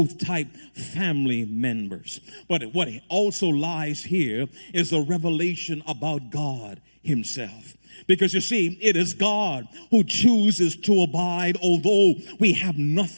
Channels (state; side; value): inverted; both; correlation -1.00